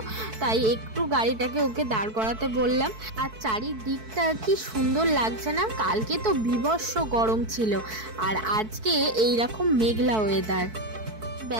তাই একটু গাড়িটাকে ওকে দাঁড় করাতে বললাম। আর চারিদিকটা কি সুন্দর লাগছে না? কালকে তো বীভৎস গরম ছিল, আর আজকে এইরকম মেঘলা ওয়েদার।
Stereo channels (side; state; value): left; late; 4.6 ms